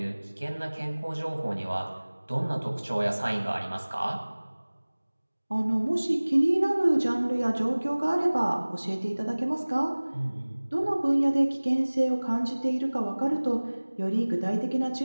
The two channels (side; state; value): both; inverted; correlation -1.00